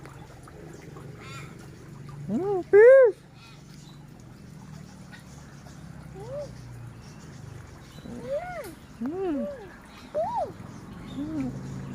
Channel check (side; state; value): both; identical; correlation 1.00